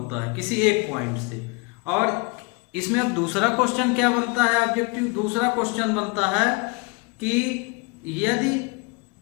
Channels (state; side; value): quieter; right; 29.9 dB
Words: है किसी एक पॉइंट से। और इसमें अब दूसरा क्वेश्चन क्या बनता है, ऑब्जेक्टिव दूसरा क्वेश्चन बनता है कि यदि